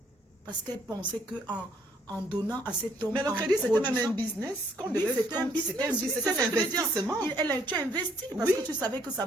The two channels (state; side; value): normal; both; correlation 0.66